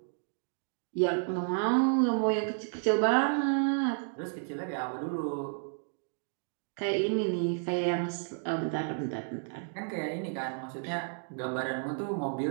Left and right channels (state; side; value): silent; left; digital silence